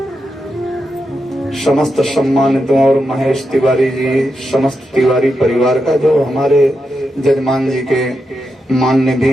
समस्त सम्मानितों और महेश तिवारी जी, समस्त तिवारी परिवार का, जो हमारे जजमान जी के मान्य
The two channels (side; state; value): both; normal; correlation 0.86